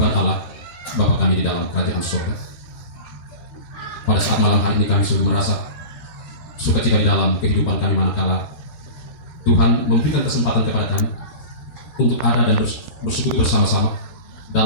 Allah, Bapa kami di dalam kerajaan surga, pada saat malam hari ini kami sungguh merasa sukacita di dalam kehidupan kami manakala Tuhan memberikan kesempatan kepada kami untuk ada dan bersekutu bersama-sama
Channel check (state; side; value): late; right; 12 ms